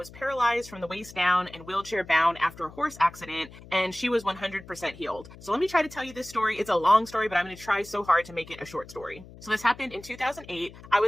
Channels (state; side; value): noise; left; hum, 18 dB below the sound